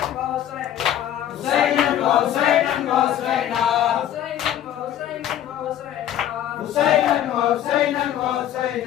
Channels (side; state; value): right; quieter; 11.3 dB